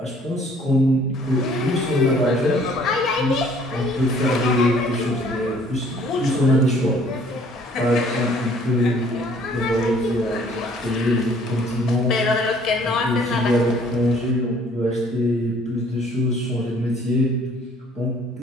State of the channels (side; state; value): both; normal; correlation 0.57